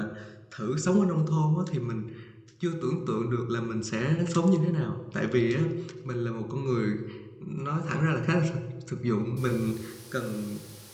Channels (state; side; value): identical; both; correlation 1.00